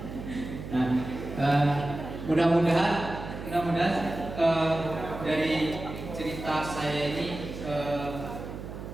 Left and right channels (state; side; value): noise; right; hum, 9 dB below the sound